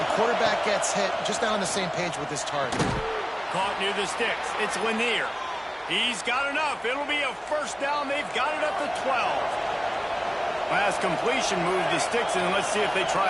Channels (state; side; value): identical; both; correlation 1.00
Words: quarterback gets hit, just not on the same page with his target. Caught near the sticks. It's Lanier. He's got enough. It'll be a first down. They've got it at the 12. Pass completion moves the sticks, and let's see if they